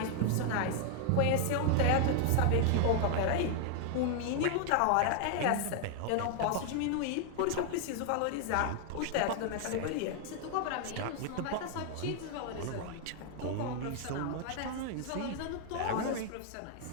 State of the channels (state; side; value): different; both; correlation 0.00